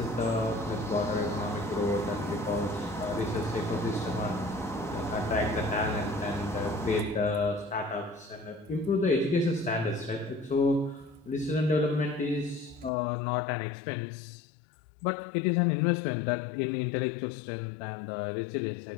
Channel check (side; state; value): right; drops out; at 12.9 s